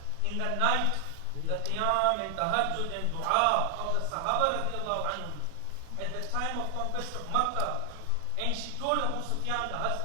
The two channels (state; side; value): different; both; correlation 0.00